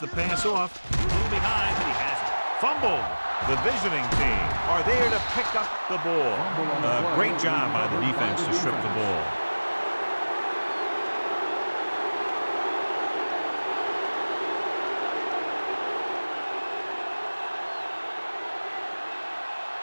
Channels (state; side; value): inverted; both; correlation -1.00